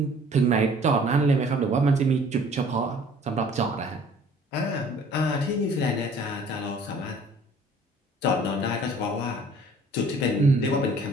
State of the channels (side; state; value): both; normal; correlation 0.53